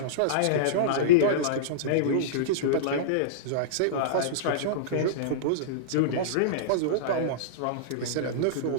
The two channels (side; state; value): both; different; correlation -0.03